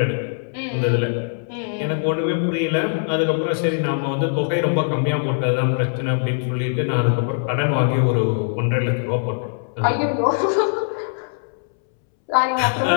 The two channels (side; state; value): right; silent; 65 dB below the other